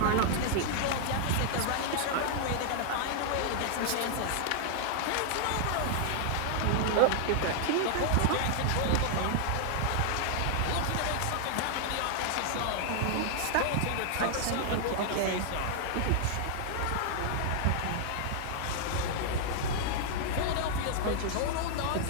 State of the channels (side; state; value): both; different; correlation 0.00